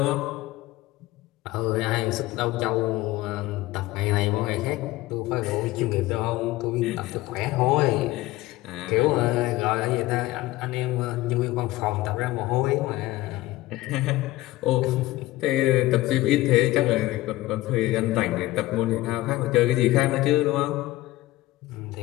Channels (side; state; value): right; quieter; 17.7 dB